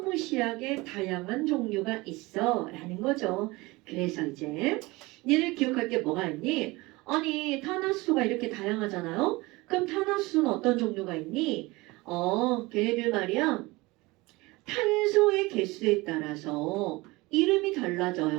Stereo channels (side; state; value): left; quieter; 22.3 dB